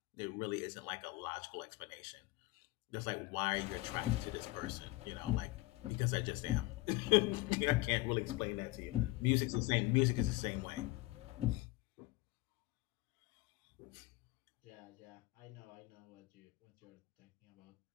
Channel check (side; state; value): right; quieter; 20.2 dB